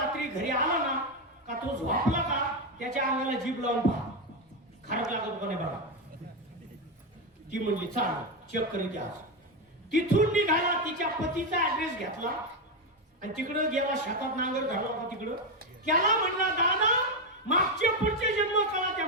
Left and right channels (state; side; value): normal; both; correlation 0.09